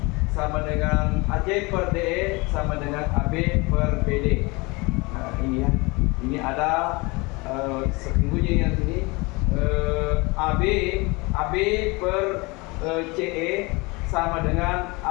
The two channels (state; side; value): quieter; right; 25.8 dB